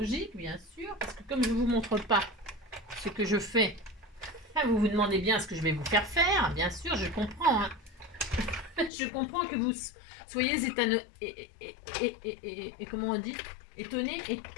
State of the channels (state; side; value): drops out; right; at 8.9 s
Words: bien sûr. Parce que comme je vous montre pas ce que je fais, vous vous demandez bien ce que je vais vous faire faire. Bien sûr, je comprends. Hein. Je comprends que vous... Soyez comment on dit? Étonné,